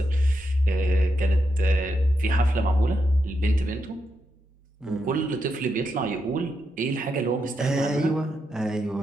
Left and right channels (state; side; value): normal; both; correlation 0.84